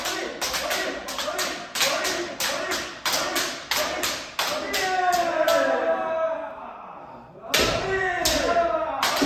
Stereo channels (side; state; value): both; identical; correlation 1.00